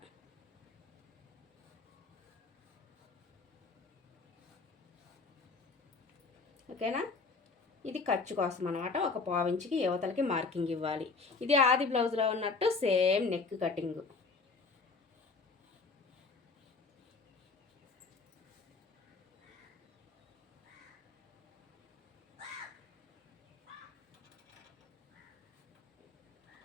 ఓకేనా. ఇది ఖర్చు కోసం అనమాట. ఒక 1/4 ఇంచుకి యువతలకి మార్కింగ్ ఇవ్వాలి. ఇది ఆది బ్లౌజ్లో ఉన్నట్టు సేమ్ నెక్ కటింగ్.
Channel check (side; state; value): right; quieter; 4.2 dB